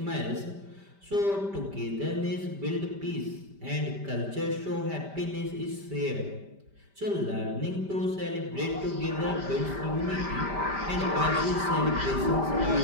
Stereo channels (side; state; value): left; late; 5.1 ms